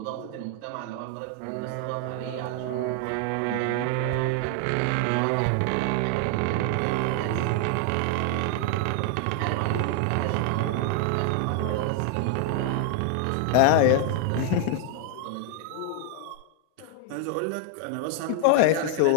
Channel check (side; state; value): both; different; correlation 0.00